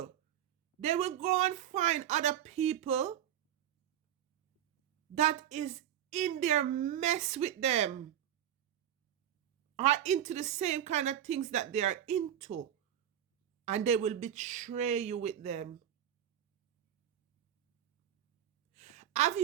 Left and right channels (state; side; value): quieter; left; 10.9 dB